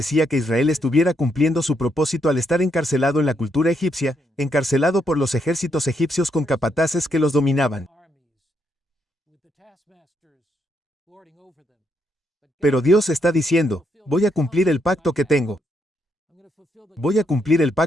que Israel estuviera cumpliendo su propósito al estar encarcelado en la cultura egipcia, encarcelado por los ejércitos egipcios con capataces que los dominaban. Pero Dios está diciendo, voy a cumplir el pacto que tengo. Voy a cumplir el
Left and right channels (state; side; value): normal; both; correlation 0.77